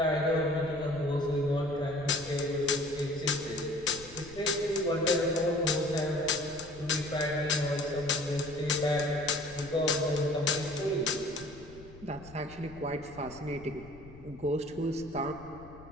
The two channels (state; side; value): noise; left; rumble, 19 dB below the sound